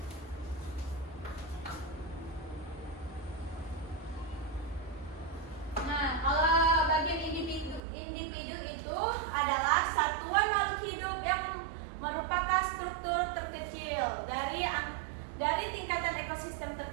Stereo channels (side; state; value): left; drops out; at 7.8 s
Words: Nah, kalau bagian individu itu adalah satuan makhluk hidup yang merupakan struktur terkecil dari tingkatan ekosistem